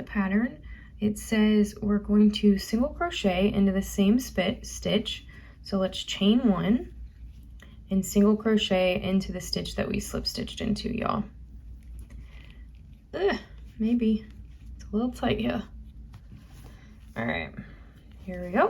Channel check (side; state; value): both; identical; correlation 1.00